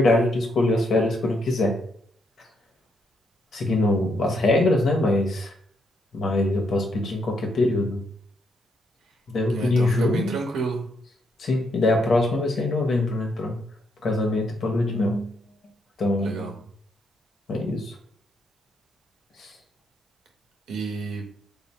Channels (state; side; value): normal; both; correlation 0.76